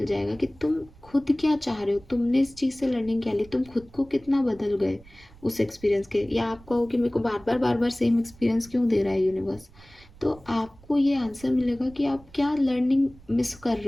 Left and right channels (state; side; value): noise; right; rumble, 24 dB below the sound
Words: जाएगा कि तुम खुद क्या चाह रहे हो, तुमने इस चीज़ से लर्निंग क्या ली, तुम खुद को कितना बदल गए उस एक्सपीरियंस के। या आप कहो कि मेरे को बार बार सेम एक्सपीरियंस क्यों दे रहा है यूनिवर्स, तो आपको ये आंसर मिलेगा कि आप क्या लर्निंग मिस कर